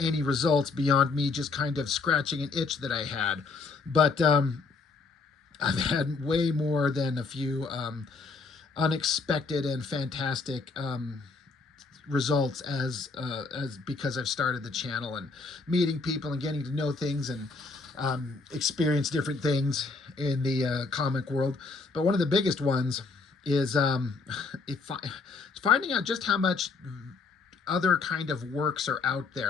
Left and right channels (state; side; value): quieter; right; 4.2 dB